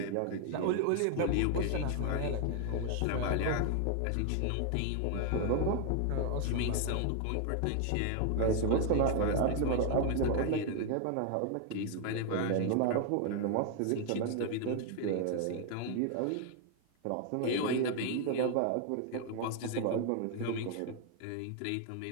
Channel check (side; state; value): both; different; correlation 0.00